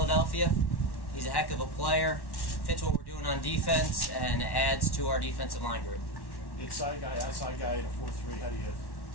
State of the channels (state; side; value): late; right; 1.1 ms